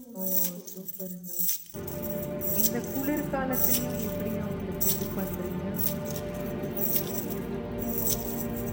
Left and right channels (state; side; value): identical; both; correlation 1.00